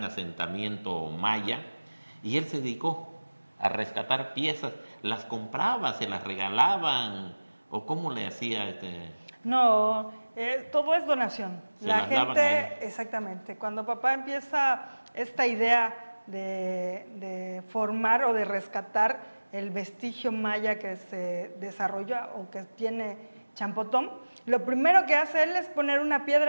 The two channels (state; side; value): inverted; both; correlation -1.00